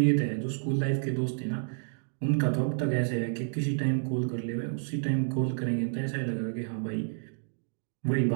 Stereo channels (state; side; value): silent; left; digital silence